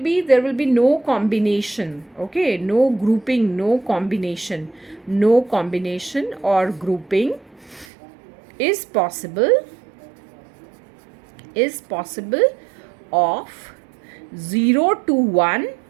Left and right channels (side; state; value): left; drops out; at 7.9 s